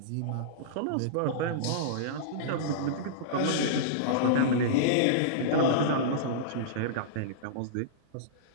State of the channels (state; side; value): different; both; correlation -0.03